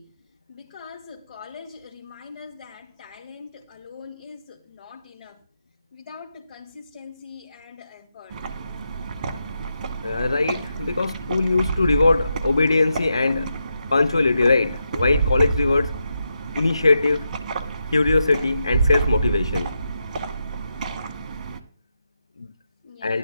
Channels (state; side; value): inverted; both; correlation -0.85